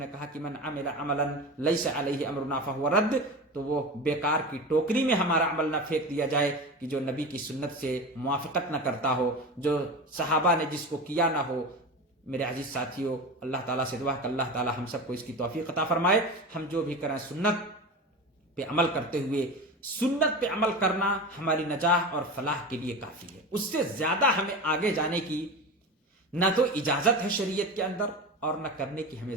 کہا کہ من عمل عملا لیس علیہ امرنا فہو رد، تو وہ بیکار کی ٹوکری میں ہمارا عمل نہ پھینک دیا جائے کہ جو نبی کی سنت سے موافقت نہ کرتا ہو، جو صحابہ نے جس کو کیا نہ ہو۔ میرے عزیز ساتھیوں، اللہ تعالیٰ سے دعا کہ اللہ تعالیٰ ہم سب کو اس کی توفیق عطا فرمائے۔ ہم جو بھی کریں سنت پہ عمل کرتے ہوئے، سنت پہ عمل کرنا ہماری نجاح اور فلاح کے لیے کافی ہے، اس سے زیادہ ہمیں آگے جانے کی نہ تو اجازت ہے شریعت کے اندر، اور نہ کرنے کی ہمیں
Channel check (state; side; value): normal; both; correlation 0.27